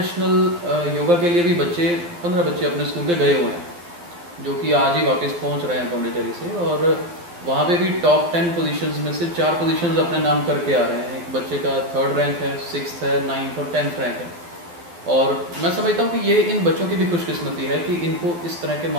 योगा के लिए भी 15 बच्चे अपने स्कूल के गए हुए हैं, जो कि आज ही वापस पहुँच रहे हैं पौंडीचेरी से। और वहाँ पे भी टॉप 10 पोजीशंस में से 4 पोजीशंस अपने नाम करके आ रहे हैं। एक बच्चे का 3rd रैंक है, 6th है, 9th और 10th रैंक है। और मैं समझता हूँ कि ये इन बच्चों की भी खुशकिस्मती है कि इनको इस तरह के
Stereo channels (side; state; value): left; late; 11 ms